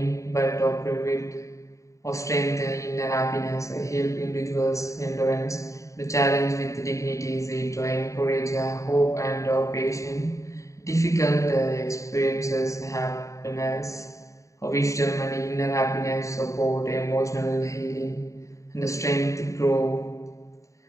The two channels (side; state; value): right; late; 0.15 ms